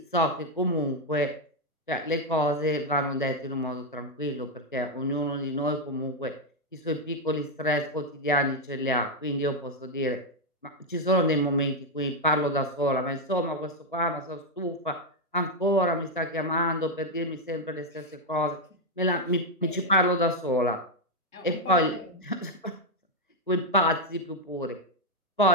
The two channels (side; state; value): both; normal; correlation 0.03